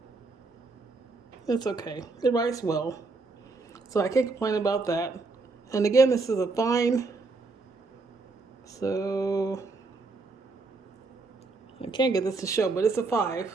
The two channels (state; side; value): quieter; left; 3.7 dB